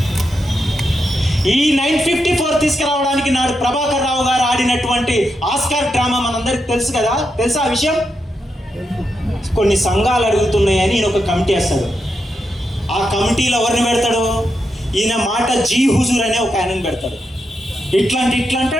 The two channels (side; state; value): both; normal; correlation 0.85